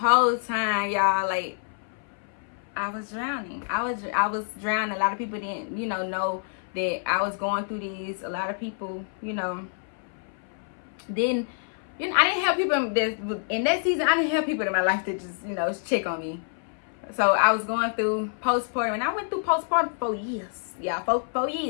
time, y'all, like, I was drowning. I was drowning. A lot of people didn't, know that I was going through these. A lot of people, didn't. I didn't have people in that season. I didn't have people in my life that just, check on me. So I was going through postpartum, and I went through postpartum for 4 years. Yeah, 4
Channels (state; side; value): silent; right; 56 dB below the other